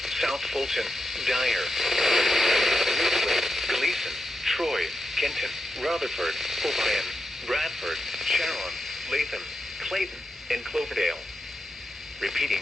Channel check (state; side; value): normal; both; correlation 0.87